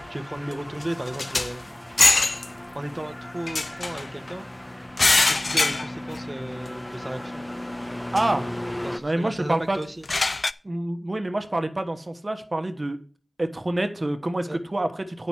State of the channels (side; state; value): both; normal; correlation 0.97